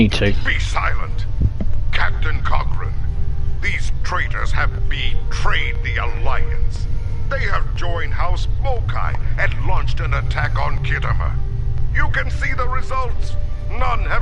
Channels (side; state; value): both; identical; correlation 1.00